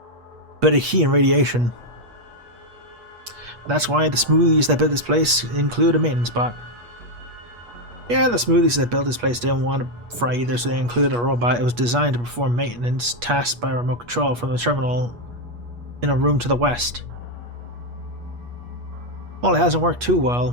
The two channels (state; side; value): late; left; 8.4 ms